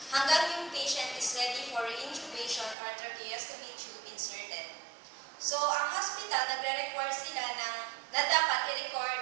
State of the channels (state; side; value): drops out; left; at 2.8 s